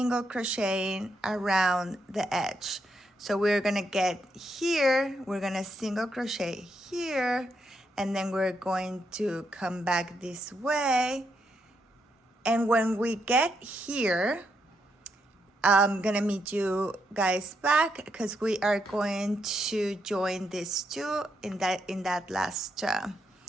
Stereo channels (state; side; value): normal; both; correlation 0.79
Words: crocheting around the edge. So we're gonna get here, we're gonna single crochet here, and then we're going to come back this way. And when we get here, I'm gonna meet you guys back because we are going to join these two in that last